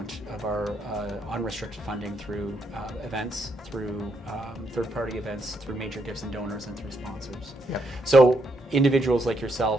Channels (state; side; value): normal; both; correlation 0.76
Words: of our unrestricted funding through events, through third-party events, through major gifts and donors, and through sponsors. Yep. So individuals like